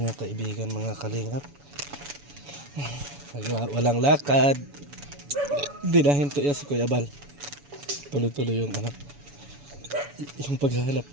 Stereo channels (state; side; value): late; left; 7.0 ms